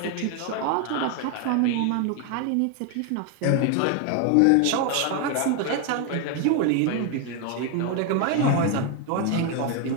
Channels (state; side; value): different; both; correlation 0.01